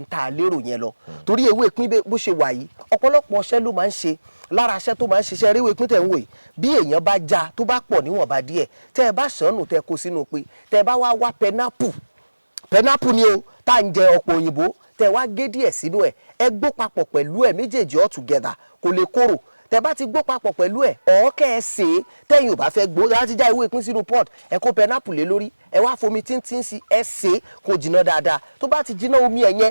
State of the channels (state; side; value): inverted; both; correlation -1.00